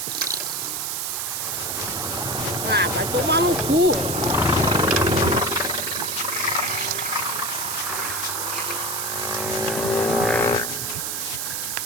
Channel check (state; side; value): noise; right; hiss, 2 dB below the sound